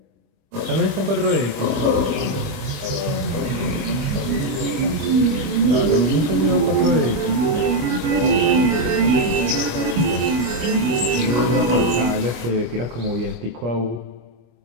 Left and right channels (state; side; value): late; left; 25 ms